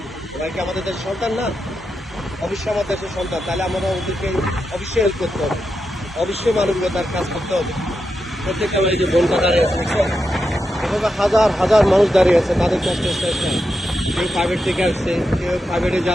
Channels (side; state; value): both; normal; correlation 0.87